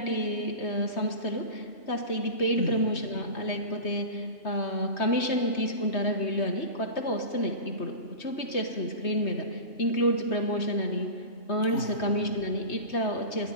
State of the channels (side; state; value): right; late; 3.2 ms